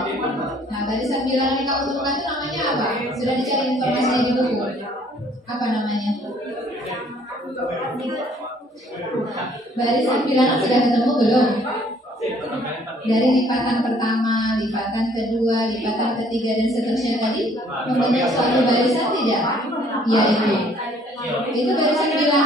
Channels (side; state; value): both; normal; correlation 0.60